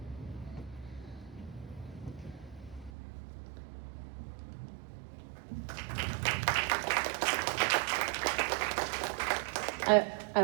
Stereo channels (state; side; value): drops out; left; at 2.9 s